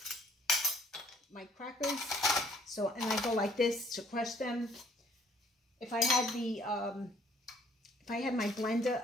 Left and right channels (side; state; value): both; normal; correlation 0.61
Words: my crackers. So, and I go like this to crush them. If I had the, if I had my blender,